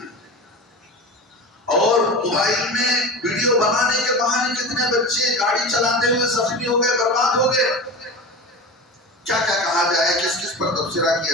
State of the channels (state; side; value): normal; both; correlation 0.31